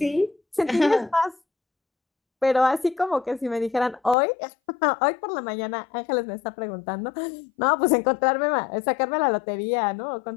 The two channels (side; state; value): right; drops out; at 4.2 s